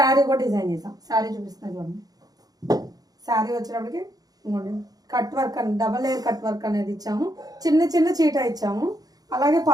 కూడా డిజైన్ చేసాం. శారీ చూపిస్తున్నాను చూడండి. శారీ వచ్చేటప్పటికి కట్ వర్క్ అని డబల్ లేయర్ కట్ వర్క్ అనేది ఇచ్చాము. చిన్న చిన్న చీట ఇచ్చాము. అలాగే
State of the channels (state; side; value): late; left; 0.18 ms